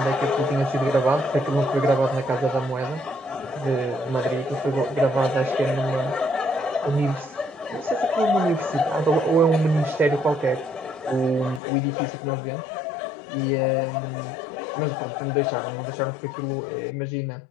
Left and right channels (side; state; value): right; drops out; at 11.6 s